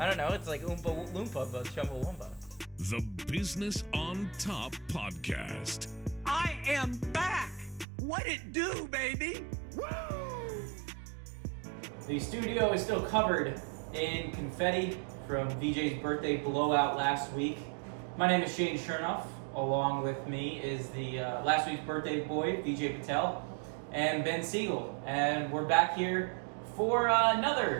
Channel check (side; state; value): left; drops out; at 7.9 s